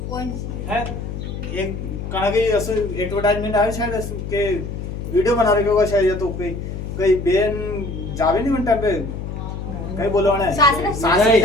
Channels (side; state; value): left; noise; hum, 7 dB below the sound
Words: कौन है एक कागे ऐसे एडवर्टाइजमेंट आया शायद के वीडियो बना रहे होगा शायद, या तो कई बेन जावे नहीं घंटा पे कहीं बोलो ना सासरे